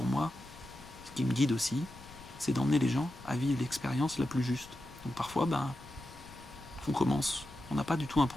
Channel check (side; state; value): left; noise; rumble, 19 dB below the sound